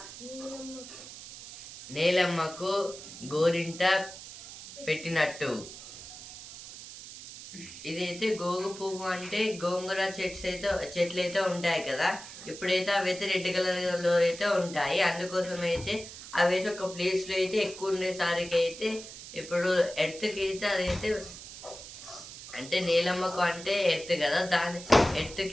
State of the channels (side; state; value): right; noise; hiss, 13 dB below the sound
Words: నేలమ్మకు గోరింట పెట్టినట్టు. ఇదైతే గోగు పువ్వు అంటే గోంగూర చెట్లు అయితే ఉంటాయి కదా, ఇప్పుడైతే అవి అయితే రెడ్ కలర్లో అయితే ఉంటాయి. అందుకోసం అయితే అవి అయితే ఒక ప్లేస్లో అయితే ఎక్కువ ఉండేసరికి అయితే ఇప్పుడు ఎర్త్కి అయితే అదైతే అంటే నీలమ్మకు అంటే ఎర్త్ కదా, దాని